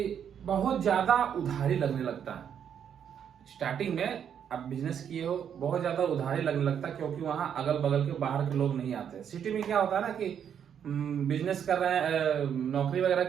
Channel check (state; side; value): quieter; left; 8.5 dB